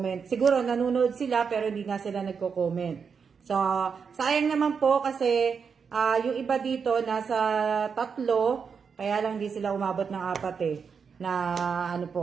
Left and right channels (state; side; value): quieter; left; 6.1 dB